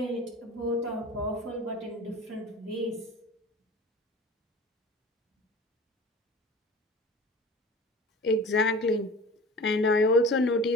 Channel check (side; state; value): both; normal; correlation 0.39